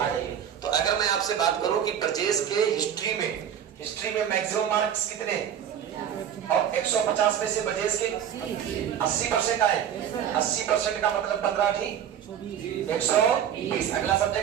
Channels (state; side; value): quieter; left; 9.3 dB